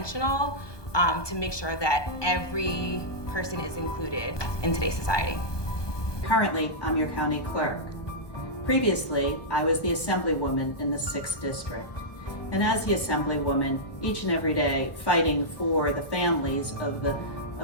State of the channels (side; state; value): right; late; 1.2 ms